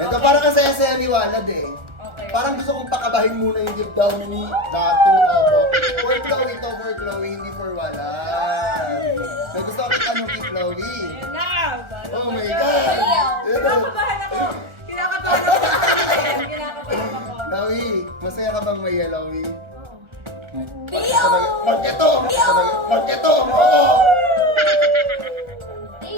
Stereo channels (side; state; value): left; late; 1.4 ms